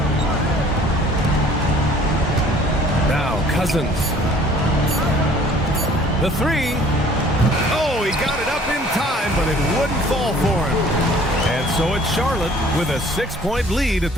Now Cousins. The 3. Oh, he got it up in time, but it wouldn't fall for him. And so it's Charlotte with a 6-point lead at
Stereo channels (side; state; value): both; normal; correlation 0.53